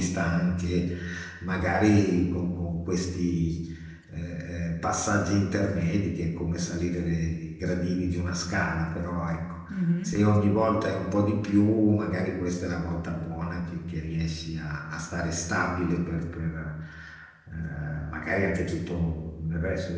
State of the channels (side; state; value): both; identical; correlation 1.00